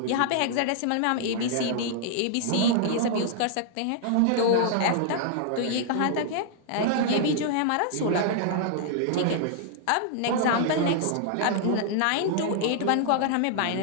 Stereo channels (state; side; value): different; both; correlation -0.01